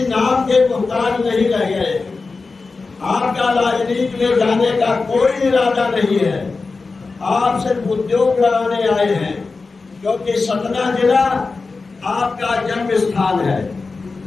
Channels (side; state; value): right; quieter; 4.1 dB